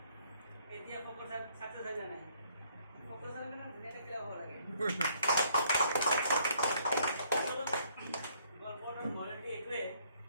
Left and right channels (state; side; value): inverted; both; correlation -0.66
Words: এতিয়া শংকৰ চাক চাকচেছ হৈ নাই শংকৰ চাক ধুনীয়াকে কিয় হ'ব লাগে গল্পটোৰ মৰমটো এইটোৱে